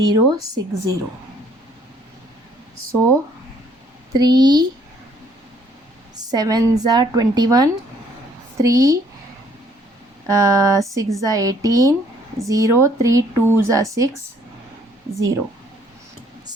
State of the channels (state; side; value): normal; both; correlation 0.63